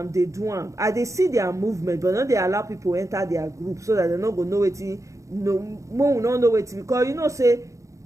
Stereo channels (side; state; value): left; late; 0.15 ms